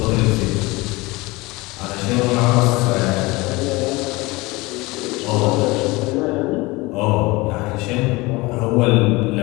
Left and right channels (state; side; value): quieter; right; 22.7 dB